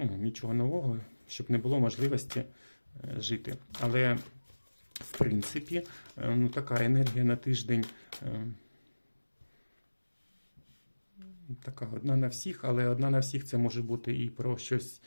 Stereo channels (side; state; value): both; inverted; correlation -1.00